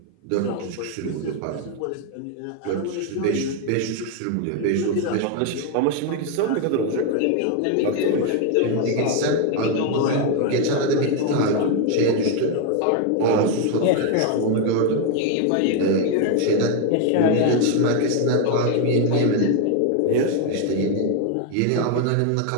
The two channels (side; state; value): both; different; correlation 0.01